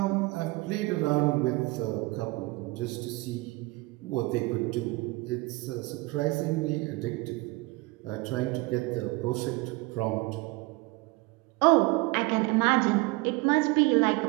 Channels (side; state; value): left; quieter; 23.2 dB